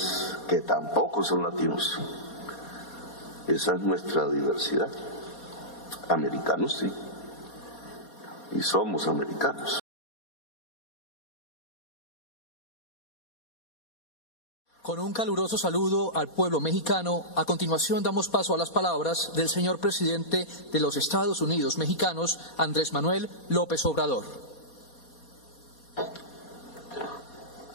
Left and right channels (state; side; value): late; right; 4.2 ms